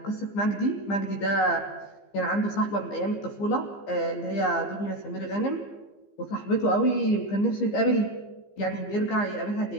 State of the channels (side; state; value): right; late; 15 ms